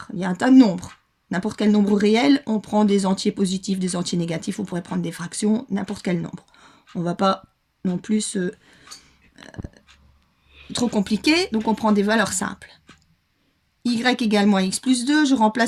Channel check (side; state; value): both; identical; correlation 1.00